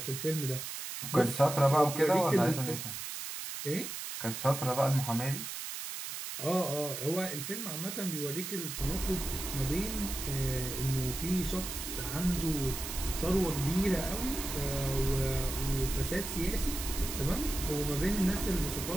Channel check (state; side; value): noise; right; hiss, 6 dB below the sound